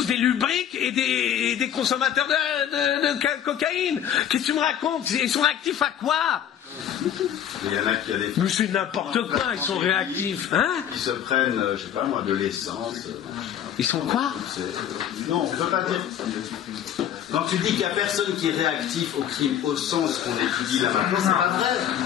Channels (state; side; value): quieter; right; 10.0 dB